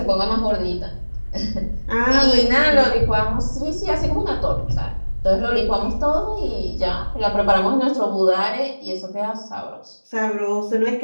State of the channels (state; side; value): inverted; both; correlation -1.00